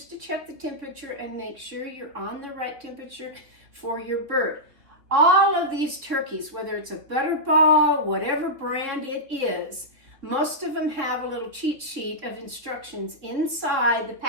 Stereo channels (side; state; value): left; late; 3.3 ms